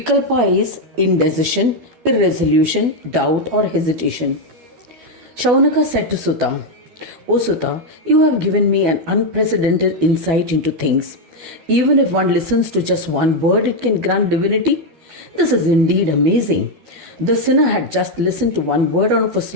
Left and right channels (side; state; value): left; late; 12 ms